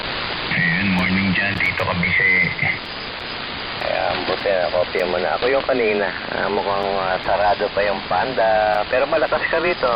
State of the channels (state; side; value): identical; both; correlation 1.00